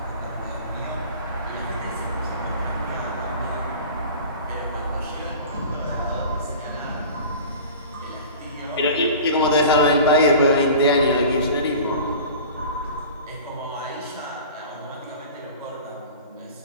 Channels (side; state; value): both; inverted; correlation -0.39